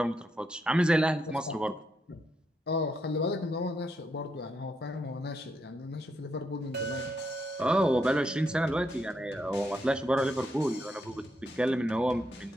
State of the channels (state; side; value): normal; both; correlation 0.79